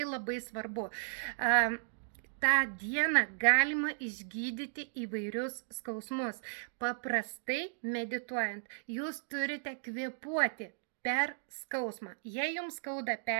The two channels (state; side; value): silent; left; digital silence